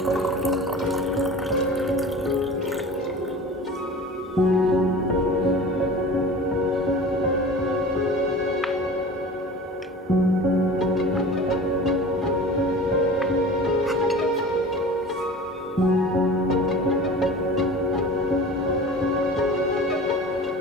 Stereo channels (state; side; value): normal; both; correlation 0.38